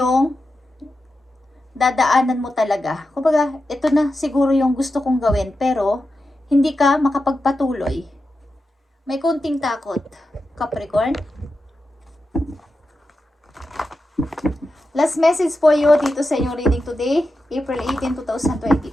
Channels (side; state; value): both; normal; correlation 0.90